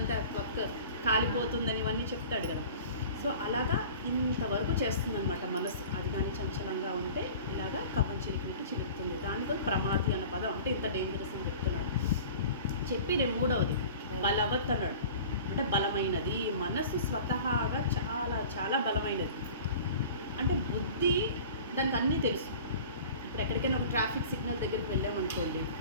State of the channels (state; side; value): inverted; both; correlation -0.41